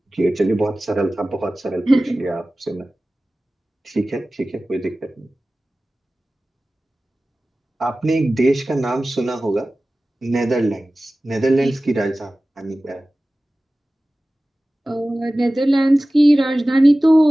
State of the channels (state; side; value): normal; both; correlation 0.97